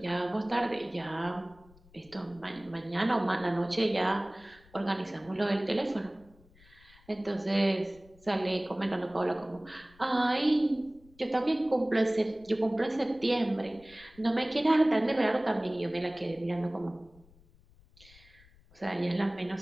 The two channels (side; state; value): left; noise; rumble, 27 dB below the sound